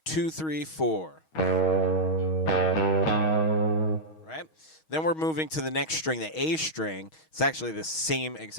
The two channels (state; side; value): late; right; 6.3 ms